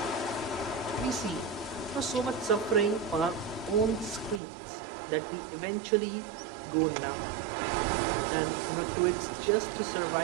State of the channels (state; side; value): drops out; left; at 4.4 s